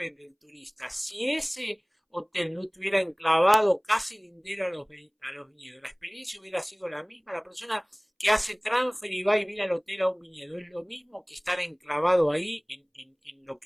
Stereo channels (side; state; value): both; identical; correlation 1.00